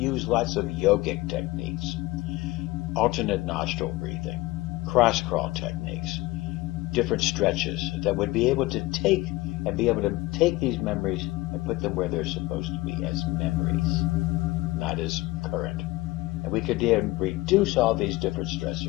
lots of yogic techniques, alternate nostril breathing, cross crawl techniques, different stretches that would be able to take these memories and put them where they're supposed to be, as memories, not as current. And we could then reduce all these different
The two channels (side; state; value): right; quieter; 19.8 dB